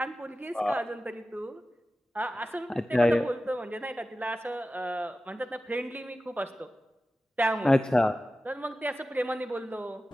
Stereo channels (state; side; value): normal; both; correlation 0.94